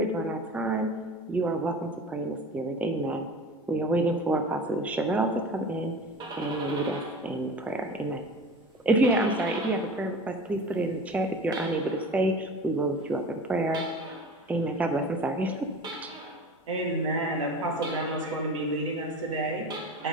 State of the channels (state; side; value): normal; both; correlation 0.36